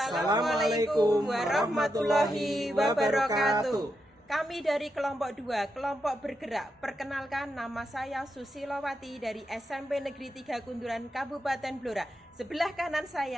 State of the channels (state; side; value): normal; both; correlation 0.85